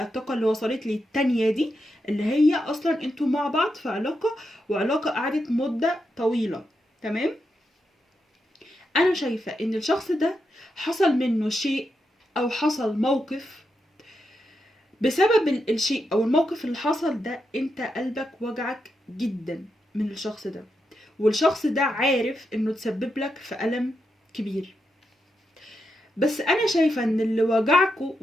الطاقة اللي وصلت لي التانية دي، اللي هي اصلا انتوا مع بعض في علاقة، وعلاقة قعدت مدة طويلة. تمام، انا شايفة ان الشخص ده حصل منه شيء او حصل موقف، بسبب الشيء او الموقف اللي حصل ده انت قلبك وجعك جدا من الشخص ده، والشخص ده عارف انه تسبب لك في ألم كبير. بس انا شايفة ان اللي وجعكوا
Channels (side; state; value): both; normal; correlation 0.85